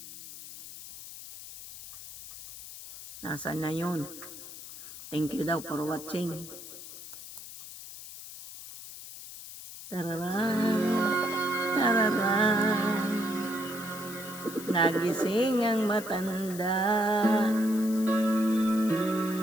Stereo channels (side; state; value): left; noise; hiss, 13 dB below the sound